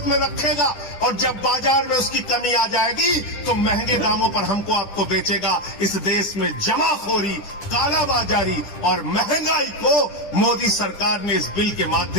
में रखेगा और जब बाजार में उसकी कमी आ जाएगी तो महंगे दामों पर हमको आपको बेचेगा। इस देश में जमाखोरी, कालाबाजारी और महंगाई को मोदी सरकार ने इस बिल के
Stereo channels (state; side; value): late; right; 10 ms